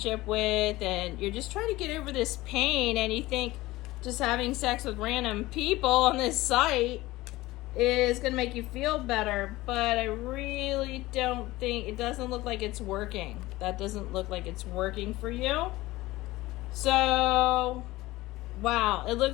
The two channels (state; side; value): quieter; right; 18.6 dB